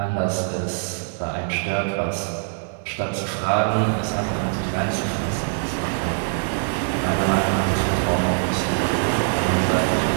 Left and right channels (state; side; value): silent; left; digital silence